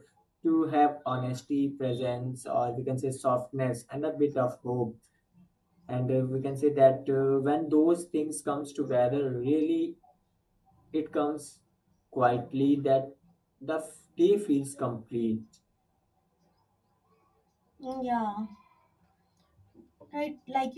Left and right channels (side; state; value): both; identical; correlation 1.00